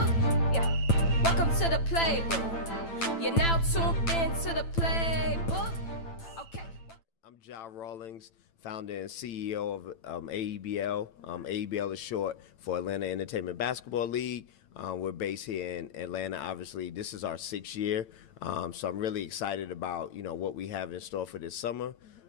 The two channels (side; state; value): right; late; 9.0 ms